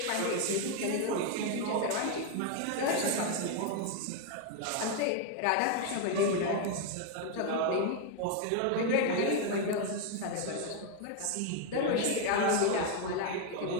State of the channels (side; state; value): both; different; correlation 0.01